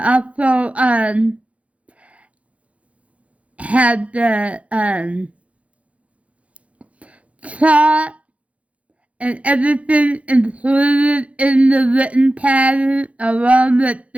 also had the chart and everything included in the written pattern along with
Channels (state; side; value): late; left; 0.064 ms